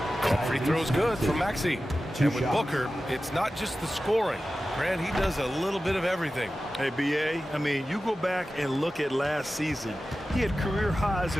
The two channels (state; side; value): normal; both; correlation 0.94